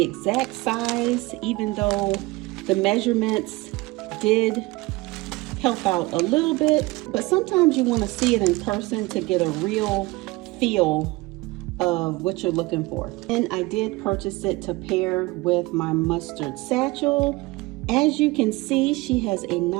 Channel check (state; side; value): quieter; left; 22.0 dB